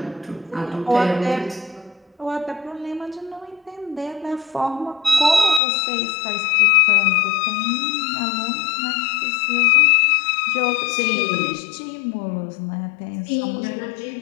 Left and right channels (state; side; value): drops out; right; at 5.6 s